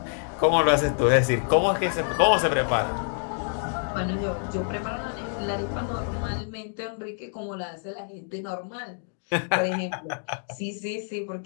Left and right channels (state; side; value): silent; right; 60 dB below the other